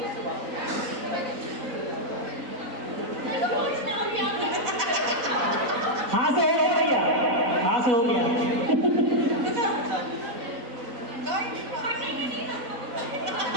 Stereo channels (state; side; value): late; left; 4.1 ms